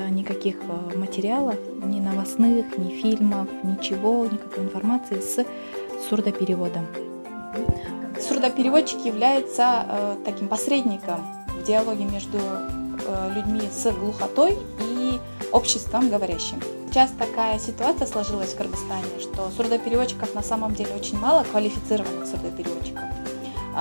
никаких материалов, ни новостных, ни фильмов, ничего, никакой информации с сурдопереводом. Сурдопереводчик является таким посредником в диалоге между людьми с глухотой и обществом говорящим. Сейчас такая ситуация сложилась в Кыргызстане, что сурдопереводчиков на самом деле очень мало, квалифицированных сурдопереводчиков.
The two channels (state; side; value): inverted; both; correlation -1.00